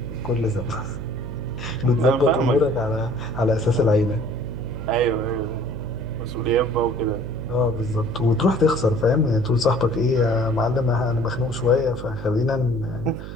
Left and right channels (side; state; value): right; noise; hum, 10 dB below the sound